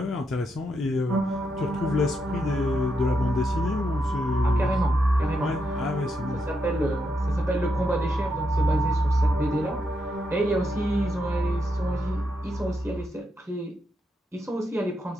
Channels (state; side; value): normal; both; correlation 0.82